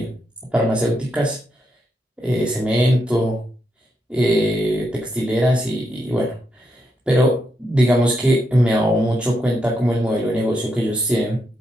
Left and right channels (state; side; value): normal; both; correlation 0.81